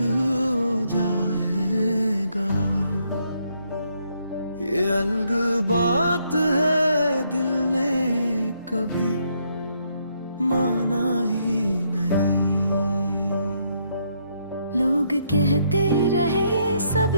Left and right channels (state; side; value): inverted; both; correlation -0.74